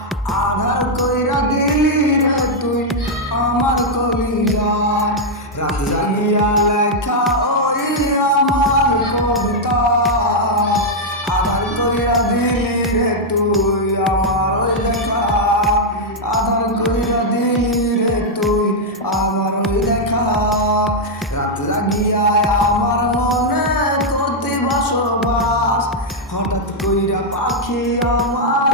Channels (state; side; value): normal; both; correlation -0.02